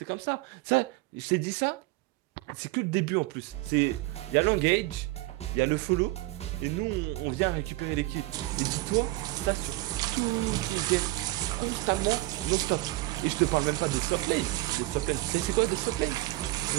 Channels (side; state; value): left; quieter; 19.4 dB